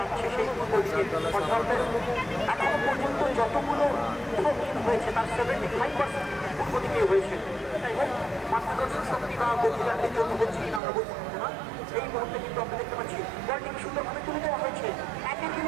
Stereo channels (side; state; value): left; drops out; at 10.8 s